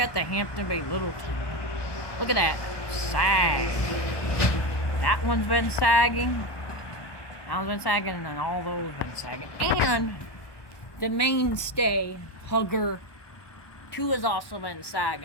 the Hampton Bay Littleton. Look at that sag. That one's been sagging. That one's been sagging, and then all those been sagging. And the mainstay, Hugger 2 has also been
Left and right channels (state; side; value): late; right; 1.2 ms